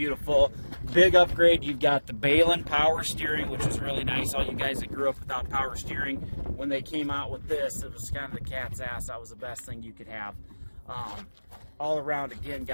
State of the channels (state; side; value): inverted; both; correlation -1.00